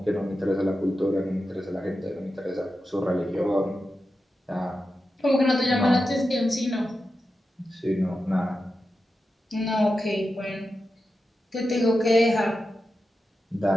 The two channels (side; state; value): both; normal; correlation 0.90